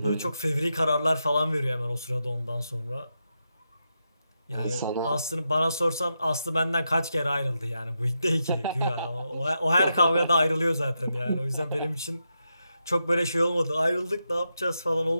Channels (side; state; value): both; inverted; correlation -0.86